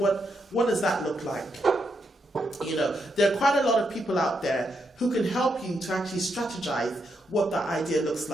does that look like? You know, there are quite a lot of people out there who can help you to actually strategize what that idea looks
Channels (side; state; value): both; normal; correlation 0.81